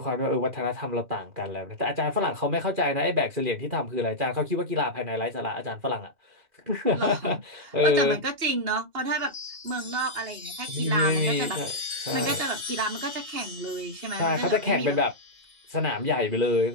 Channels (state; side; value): late; left; 2.8 ms